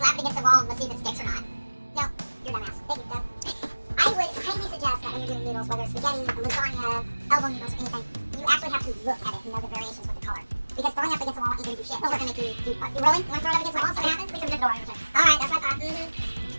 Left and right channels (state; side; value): inverted; both; correlation -1.00